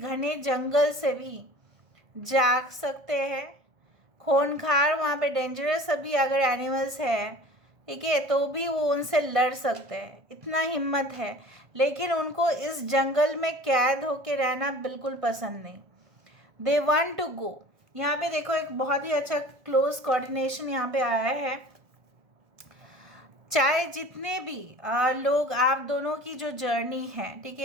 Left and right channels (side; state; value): left; late; 1.5 ms